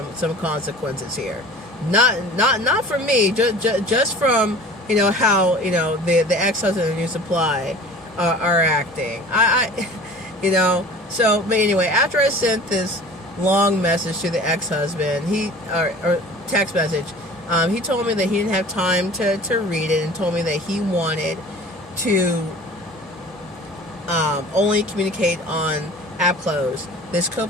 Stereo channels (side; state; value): both; normal; correlation 0.42